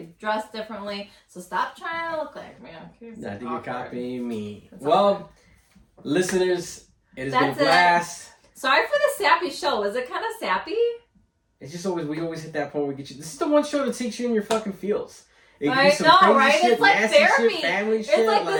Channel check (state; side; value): identical; both; correlation 1.00